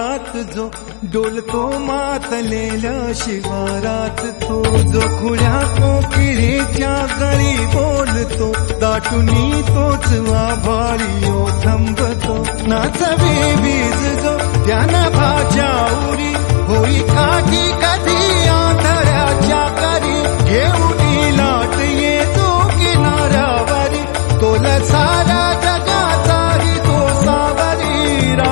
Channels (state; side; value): quieter; right; 37.0 dB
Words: जो डोलतो मातलेल्या शिवारात तो जो खुल्या कोकिळेच्या गळी बोलतो दाटुनी तोच आभाळी थांबतो नाचवी बीज जो त्यानं भाच्या उरी होई काठी कधी आंधळ्याच्या करी घेऊन लाट येतो किनाऱ्यावरी तोला सारा जगाचाही तो सावरी